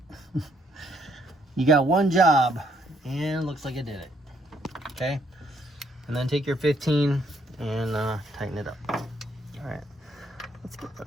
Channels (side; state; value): both; normal; correlation 0.70